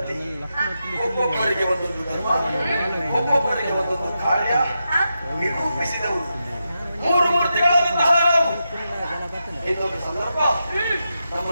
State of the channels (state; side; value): inverted; both; correlation -0.87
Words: ಒಬ್ಬೊಬ್ಬರಿಗೆ ಒಂದೊಂದು ಧರ್ಮ, ಒಬ್ಬೊಬ್ಬರಿಗೆ ಒಂದೊಂದು ಕಾರ್ಯ ನಿರೂಪಿಸಿದವು ಮೂರು ಮೂರ್ತಿಗಳಾದಂತಹ ನಾವು. ಇನ್ನೊಂದು ಸಂದರ್ಭ